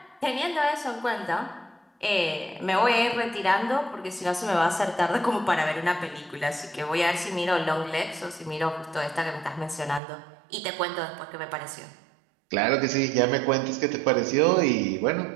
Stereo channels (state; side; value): drops out; left; at 10.0 s